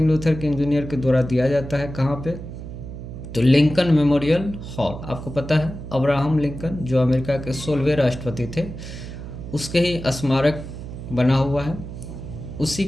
लूथर किंग जूनियर के द्वारा दिया जाता है। कहाँ पे, तो लिंकन मेमोरियल हॉल। आपको पता है अब्राहम लिंकन जो अमेरिका के 16वें राष्ट्रपति थे, उसके ही स्मारक बना हुआ है। उसी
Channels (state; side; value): noise; right; hum, 10 dB below the sound